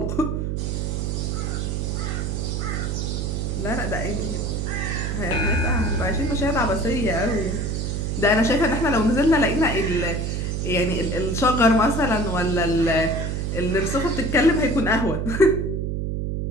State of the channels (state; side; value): noise; right; hum, 1 dB below the sound